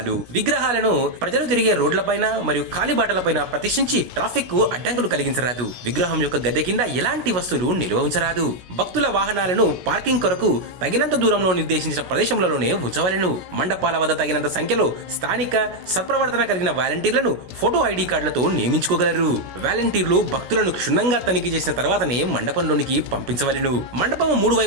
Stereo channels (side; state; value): left; late; 16 ms